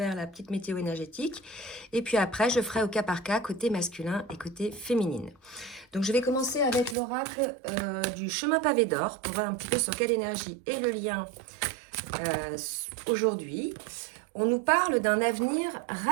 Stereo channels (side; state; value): left; drops out; at 7.0 s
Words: la petite météo énergétique et puis après je ferai au cas par cas côté masculin et côté féminine. Donc je vais commencer avec l'oracle du chemin pavé d'or pour voir un petit peu sur quelle énergie est le lien aujourd'hui. On nous parle d'un avenir